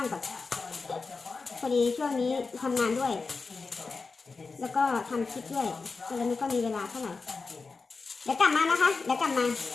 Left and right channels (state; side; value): quieter; right; 4.3 dB